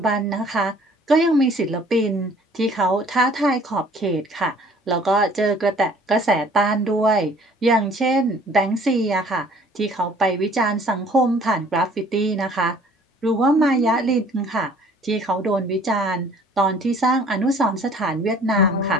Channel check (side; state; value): both; normal; correlation 0.54